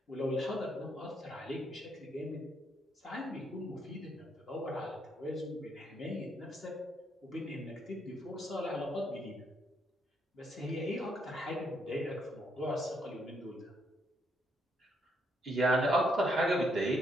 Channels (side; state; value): both; normal; correlation 0.74